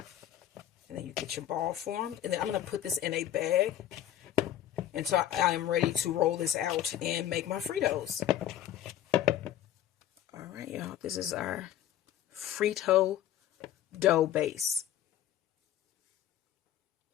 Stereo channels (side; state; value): right; quieter; 11.7 dB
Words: then you get your ball formed. And then I'm going to put this in a bag until I am ready to roll this out and make my Fritos. Alright, y'all. This is our Frito dough base.